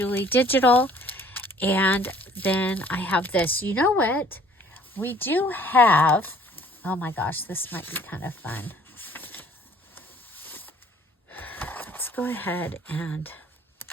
Digital. And then I have this. You know what? We do have, oh my gosh, this might be kind of fun. Let's go ahead and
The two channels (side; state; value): both; normal; correlation 0.56